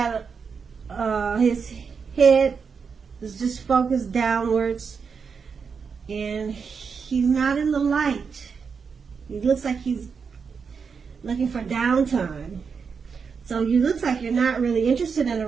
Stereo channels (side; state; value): left; quieter; 5.8 dB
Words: his head is just focused downwards. And he's not in the light. He looks like he's looking for downtime. So you looks like you're not really interested in a